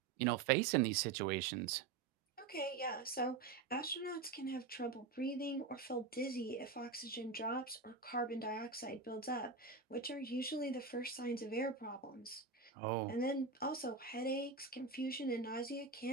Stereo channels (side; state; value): left; quieter; 4.4 dB